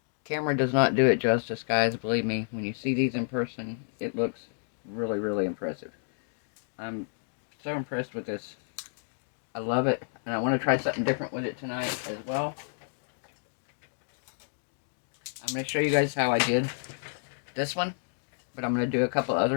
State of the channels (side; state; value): right; silent; digital silence